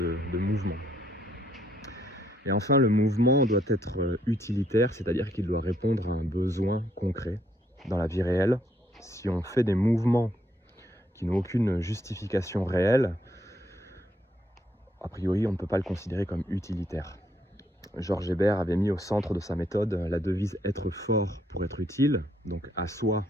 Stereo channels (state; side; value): normal; both; correlation 0.72